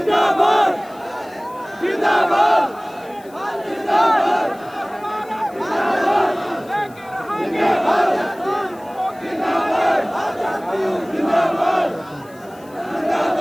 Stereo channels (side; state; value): left; noise; hiss, 27 dB below the sound